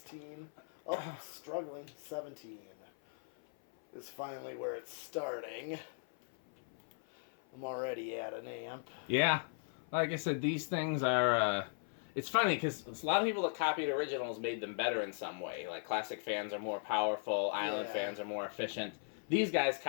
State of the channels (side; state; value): right; silent; 52 dB below the other